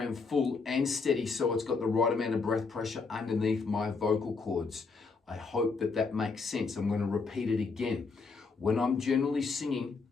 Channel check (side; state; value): right; quieter; 4.5 dB